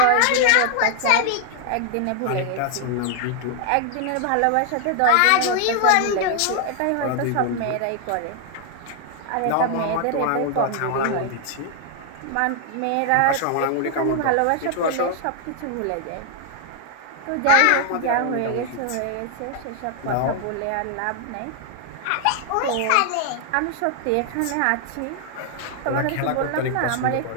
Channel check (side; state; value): both; different; correlation 0.00